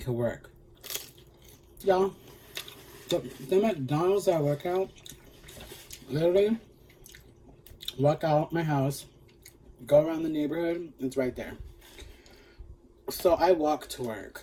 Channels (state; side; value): identical; both; correlation 1.00